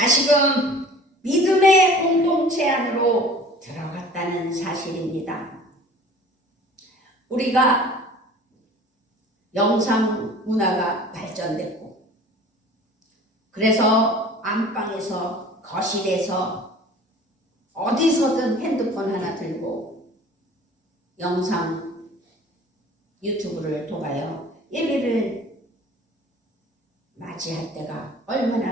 믿음의 공동체 안으로 들어갔다는 사실입니다. 우리가 영상 문화가 발전됐고 그래서 안방에서 거실에서 어디서든 핸드폰 하나 들고 영상 유튜브를 통하여 예배를 맞이할 때가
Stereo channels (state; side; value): normal; both; correlation 0.45